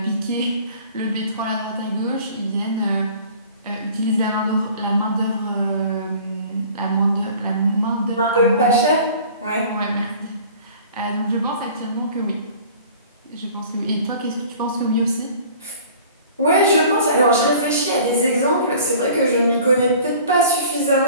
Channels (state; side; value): inverted; both; correlation -0.47